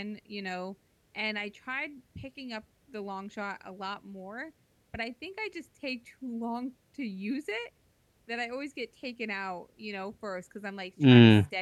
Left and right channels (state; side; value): identical; both; correlation 1.00